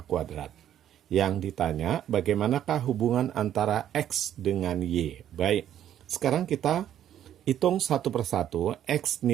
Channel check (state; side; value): quieter; left; 10.8 dB